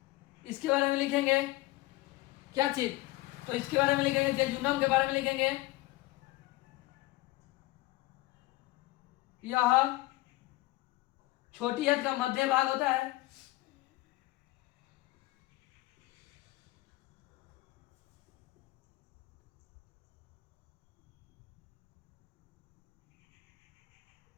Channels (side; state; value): right; quieter; 19.0 dB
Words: इसके बारे में लिखेंगे क्या चीज? तो इसके बारे में लिखेंगे, जेजुनम के बारे में लिखेंगे। यह छोटी आंत का मध्य भाग होता है।